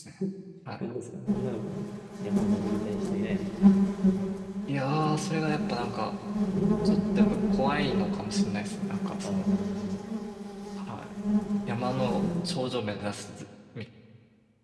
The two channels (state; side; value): identical; both; correlation 1.00